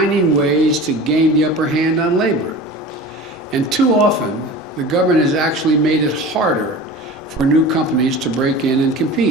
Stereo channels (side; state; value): both; normal; correlation 0.36